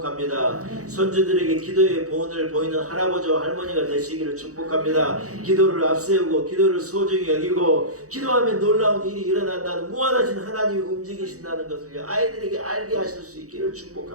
손주들에게 기도의 본을 보이는 할아버지와 할머니가 되시기를 축복합니다. 기도를 앞세우고 기도를 소중히 여기고 기도하면 놀라운 일이 일어난다는 무한하신 하나님이 움직이신다는 것을 아이들에게 알게 하실 수 있기를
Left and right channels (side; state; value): left; late; 0.66 ms